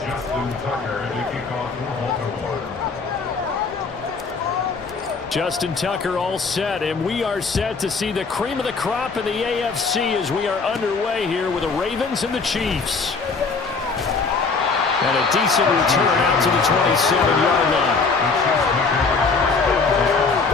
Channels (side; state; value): right; quieter; 4.5 dB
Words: Tucker in the kickoff for Baltimore. Justin Tucker all set, and we are set to see the cream of the crop in the AFC as we are underway here with the Ravens and the Chiefs. And a decent return out to the 27-yard line.